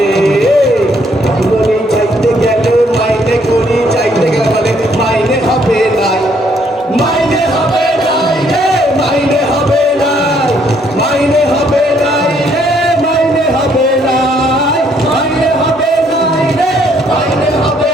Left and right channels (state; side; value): normal; both; correlation 0.67